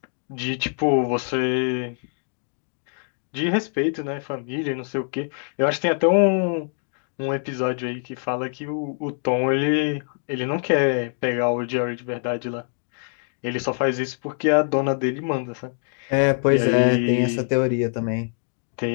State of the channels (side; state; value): right; silent; 63 dB below the other